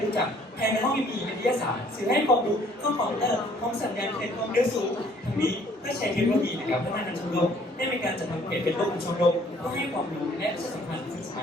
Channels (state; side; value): normal; both; correlation 0.59